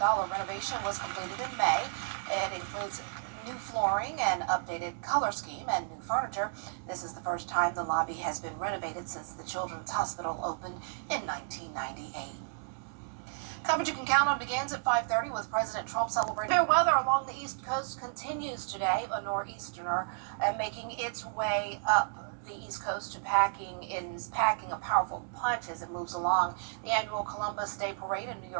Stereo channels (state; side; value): silent; left; digital silence